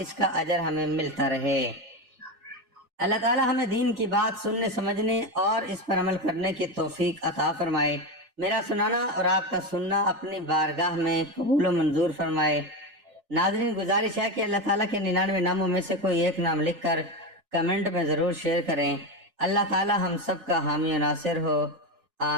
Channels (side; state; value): left; late; 3.4 ms